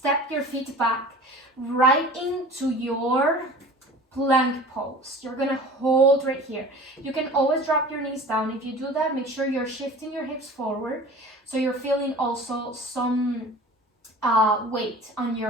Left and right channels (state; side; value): normal; both; correlation 0.41